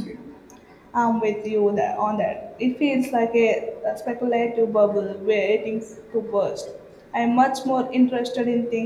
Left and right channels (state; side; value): identical; both; correlation 1.00